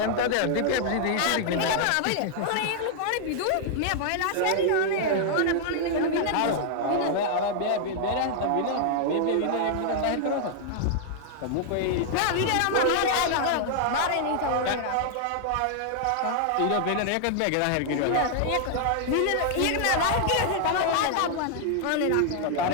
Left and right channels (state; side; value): different; both; correlation -0.01